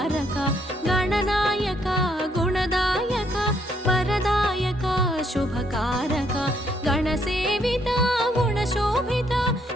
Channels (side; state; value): both; normal; correlation 0.71